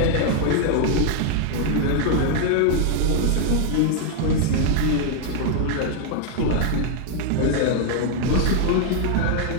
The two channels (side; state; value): both; different; correlation 0.00